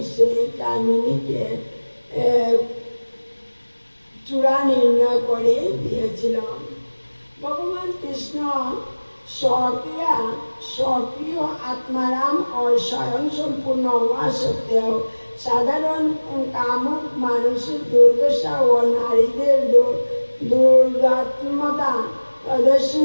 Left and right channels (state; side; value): inverted; both; correlation -1.00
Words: সেই কামিনীকে চূড়া নির্ণয় করে দিয়েছিল। ভগবান কৃষ্ণ স্বকীয় আত্মারাম ও স্বয়ং সম্পূর্ণ হওয়া সত্ত্বেও সাধারণ কামুক মানুষের দুর্দশা ও নারীদের দুর্দাত্মতা